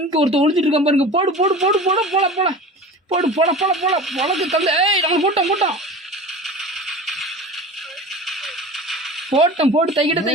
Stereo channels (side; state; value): both; normal; correlation 0.35